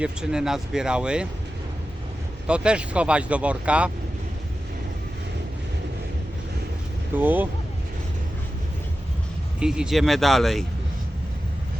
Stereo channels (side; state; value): both; normal; correlation 0.93